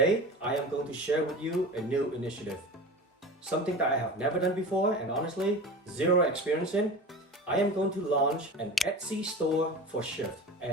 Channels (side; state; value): both; normal; correlation 0.32